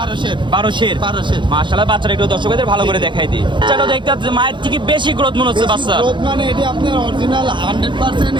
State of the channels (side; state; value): left; late; 0.23 ms